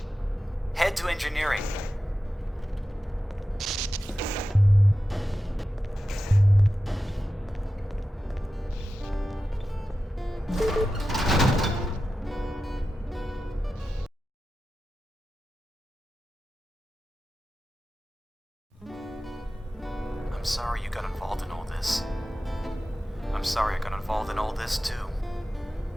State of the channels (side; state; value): both; normal; correlation 0.93